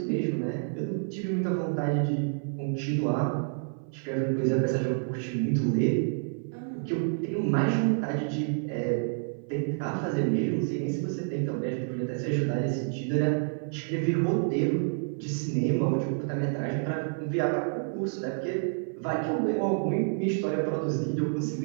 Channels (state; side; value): silent; left; 57 dB below the other